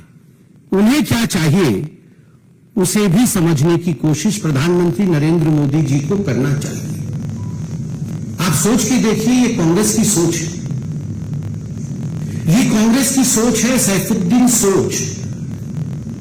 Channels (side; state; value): both; identical; correlation 1.00